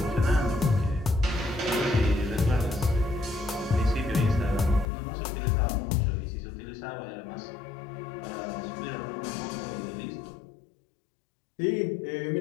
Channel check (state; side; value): drops out; right; at 4.9 s